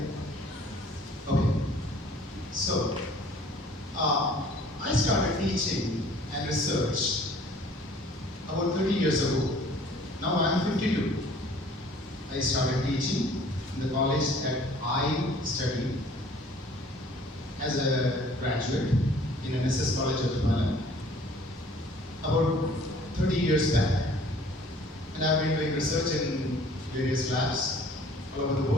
Okay. So, I started teaching and research about 30 years ago. Now I'm 52. I started teaching in the college that I studied as a graduate in NSS College of Tamala about 30 years back. And I've been doing research in various labs all over the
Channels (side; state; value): both; normal; correlation 0.53